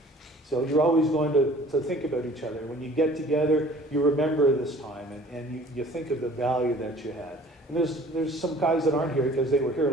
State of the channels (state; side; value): normal; both; correlation 0.50